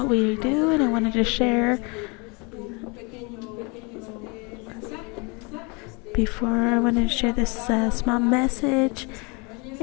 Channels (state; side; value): quieter; right; 30.4 dB